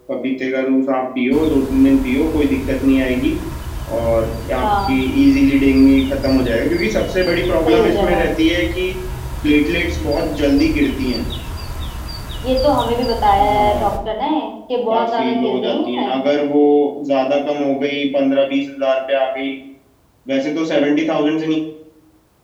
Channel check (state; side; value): identical; both; correlation 1.00